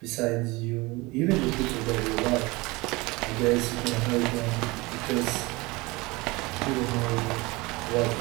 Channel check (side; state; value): left; quieter; 23.4 dB